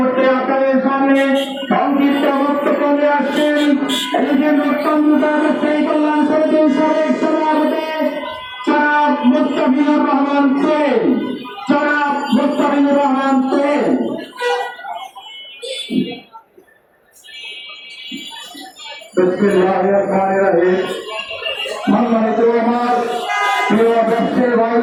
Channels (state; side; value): identical; both; correlation 1.00